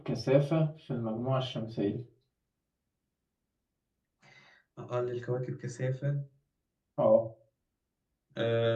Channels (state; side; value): identical; both; correlation 1.00